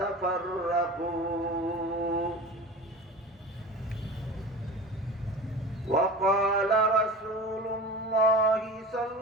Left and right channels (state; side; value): normal; both; correlation 0.34